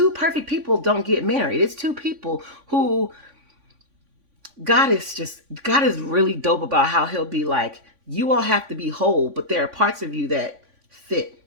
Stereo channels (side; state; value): left; late; 3.5 ms